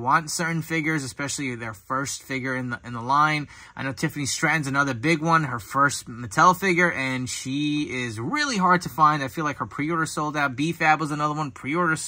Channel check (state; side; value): identical; both; correlation 1.00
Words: certain figures, especially their first figure in the line, I know Tiffany Stratton's another big one, her first Mattel figure, and she is really hard to find. I feel like her pre-order sold out. B-Fab was another one, pre-order